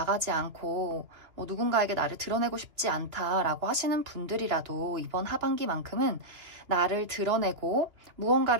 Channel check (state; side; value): late; left; 3.0 ms